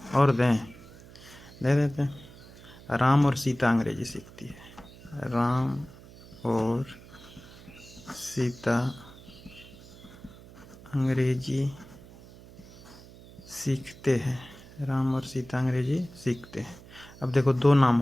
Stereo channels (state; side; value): noise; right; hum, 20 dB below the sound